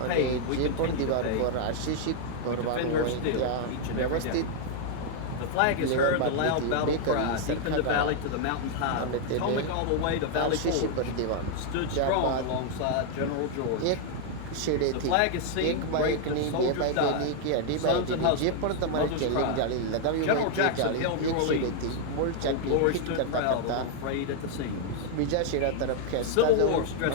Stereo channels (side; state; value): both; different; correlation 0.00